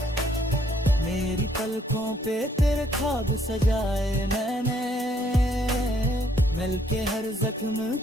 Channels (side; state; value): both; normal; correlation 0.66